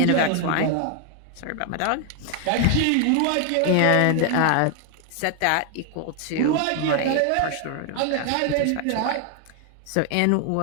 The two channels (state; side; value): different; both; correlation 0.00